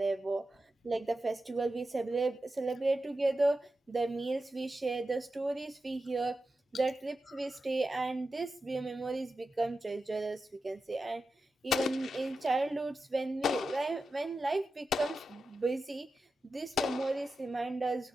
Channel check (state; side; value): normal; both; correlation 0.91